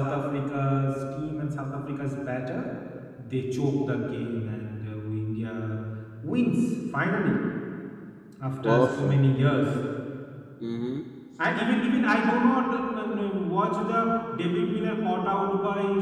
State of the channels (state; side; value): identical; both; correlation 1.00